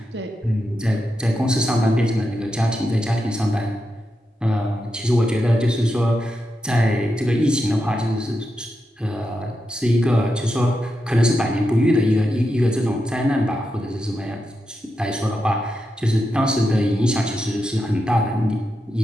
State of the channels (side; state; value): both; normal; correlation 0.87